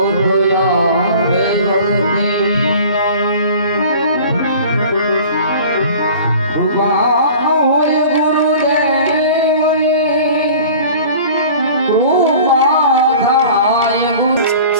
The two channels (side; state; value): both; inverted; correlation -0.43